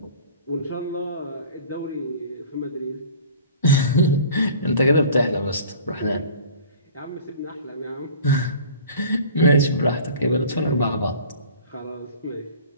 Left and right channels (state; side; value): inverted; both; correlation -0.45